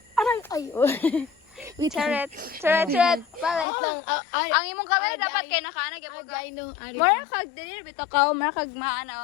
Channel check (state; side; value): drops out; right; at 3.7 s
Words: Aray! Ay! Oh. Wait lang. Charet. Balik. Wait lang. Ang imong kamera dapat kay nakaanag yapon ka. Agay no. Ari. Mara kag dili bitaw ka, mara kag